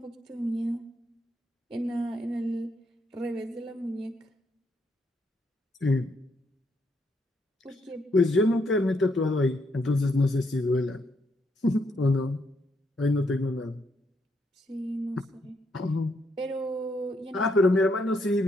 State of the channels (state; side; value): normal; both; correlation 0.76